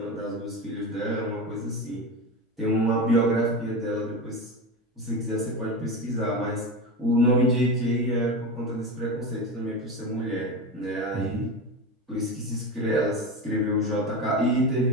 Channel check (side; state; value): both; normal; correlation 0.22